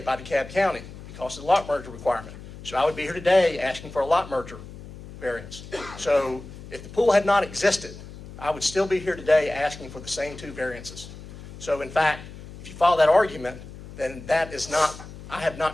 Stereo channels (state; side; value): noise; left; hum, 15 dB below the sound